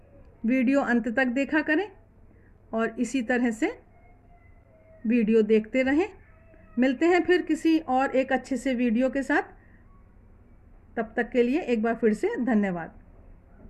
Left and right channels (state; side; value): identical; both; correlation 1.00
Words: वीडियो अंत तक देखा करें और इसी तरह से वीडियो देखते रहें। मिलते हैं फिर किसी और एक अच्छे से वीडियो के साथ। तब तक के लिए एक बार फिर से धन्यवाद।